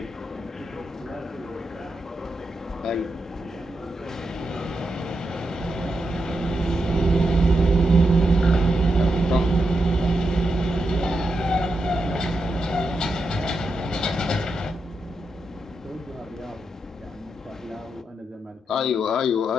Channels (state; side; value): normal; both; correlation 0.85